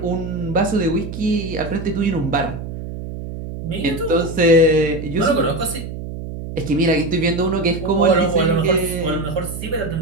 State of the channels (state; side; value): noise; right; hum, 8 dB below the sound